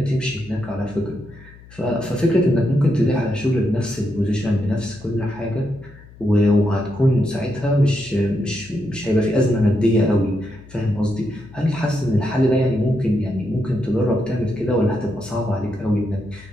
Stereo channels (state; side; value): noise; left; hum, 21 dB below the sound